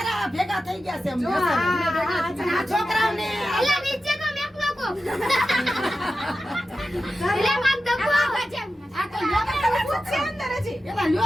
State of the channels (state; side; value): normal; both; correlation 0.92